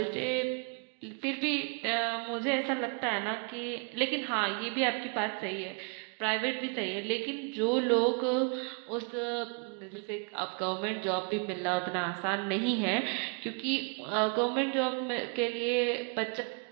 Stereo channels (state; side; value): quieter; left; 37.8 dB